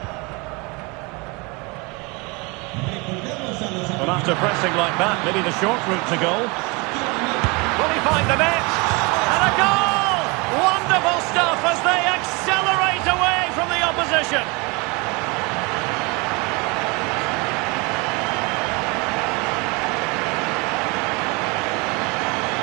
Well, after pressing like that, maybe the short route to goal. Will he find the net? And a goal! Wonderful stuff as they accelerate away from the opposition.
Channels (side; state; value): left; quieter; 28.0 dB